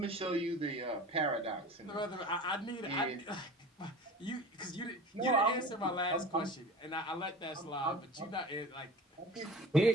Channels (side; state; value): both; normal; correlation 0.38